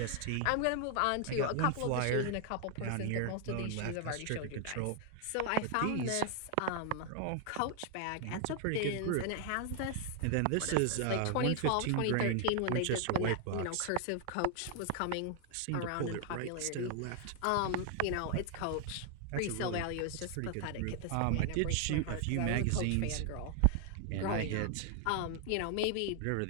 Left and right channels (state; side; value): different; both; correlation 0.00